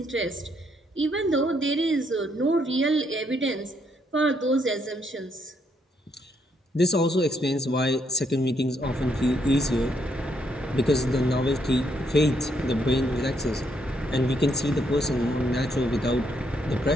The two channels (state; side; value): normal; both; correlation 0.74